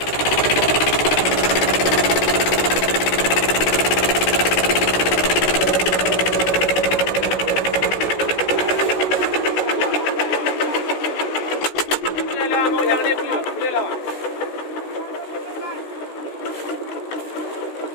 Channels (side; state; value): right; late; 16 ms